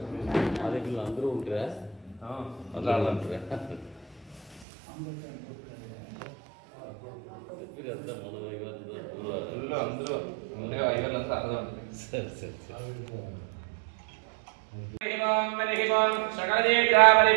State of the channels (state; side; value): drops out; left; at 4.7 s